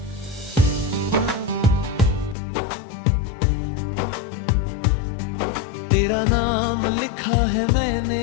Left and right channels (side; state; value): right; drops out; at 2.4 s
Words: तेरा नाम लिखा है मैंने